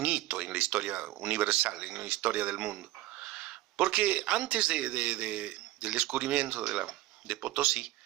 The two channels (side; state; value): left; quieter; 16.7 dB